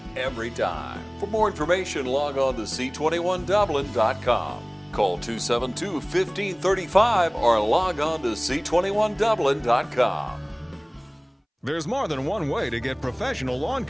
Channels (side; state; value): both; identical; correlation 1.00